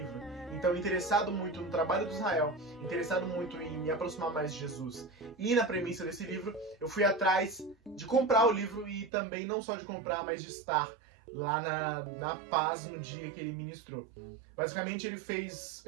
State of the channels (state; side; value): drops out; left; at 9.1 s